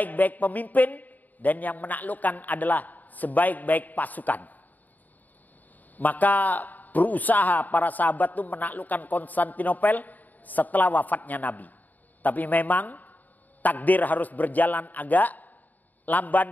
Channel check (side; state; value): right; late; 0.083 ms